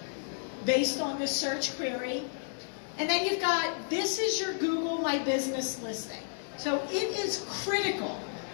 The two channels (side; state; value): right; silent; digital silence